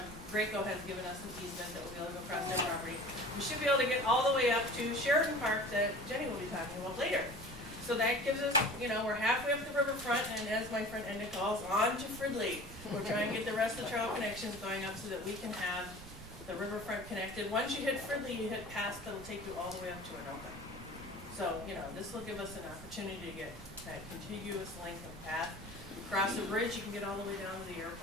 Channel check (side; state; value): right; noise; rumble, 15 dB below the sound